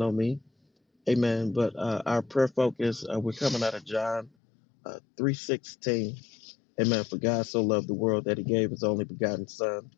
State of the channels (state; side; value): drops out; right; at 4.3 s